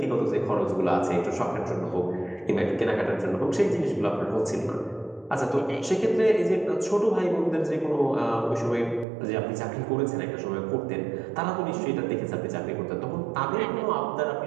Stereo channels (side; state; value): left; drops out; at 9.1 s